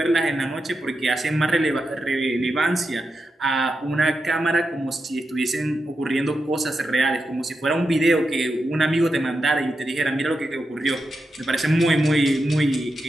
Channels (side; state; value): both; normal; correlation 0.88